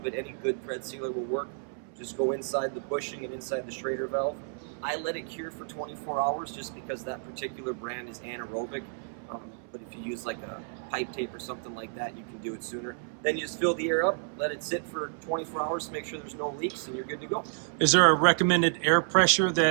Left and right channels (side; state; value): left; silent; 58 dB below the other